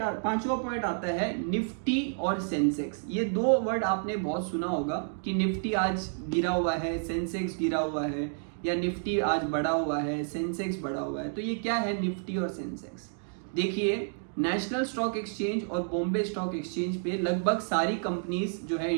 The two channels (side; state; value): left; silent; digital silence